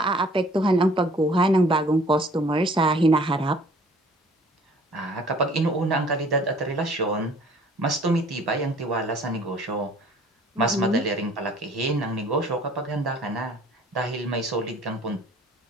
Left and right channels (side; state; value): both; normal; correlation 0.54